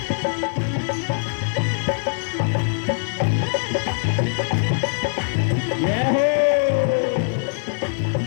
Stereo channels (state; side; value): silent; right; 64 dB below the other